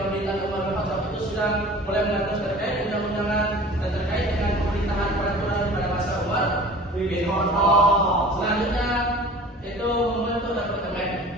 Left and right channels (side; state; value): both; normal; correlation 0.43